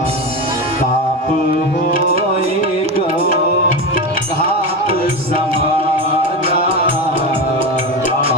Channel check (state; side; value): normal; both; correlation 0.19